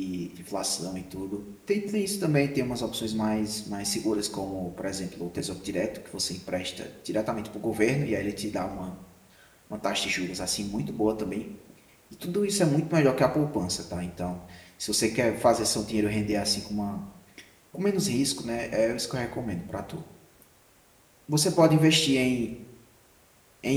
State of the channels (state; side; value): identical; both; correlation 1.00